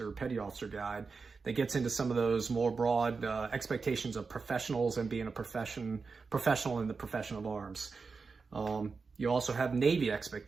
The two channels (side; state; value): left; quieter; 4.7 dB